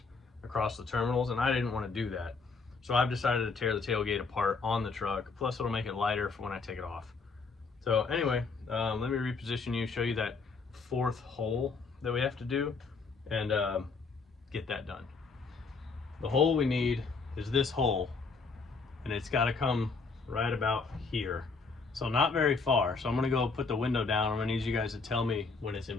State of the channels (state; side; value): quieter; right; 4.5 dB